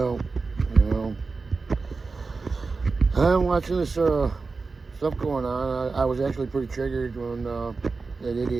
you know, I'm watching this stuff going on. I was actually pretty triggered when that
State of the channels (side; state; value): left; quieter; 4.2 dB